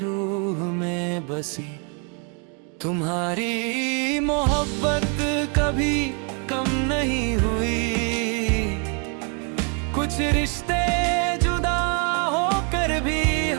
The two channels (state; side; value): quieter; left; 37.0 dB